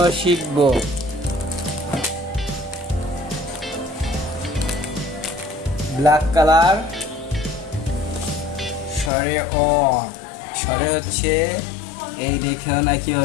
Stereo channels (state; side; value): drops out; right; at 9.1 s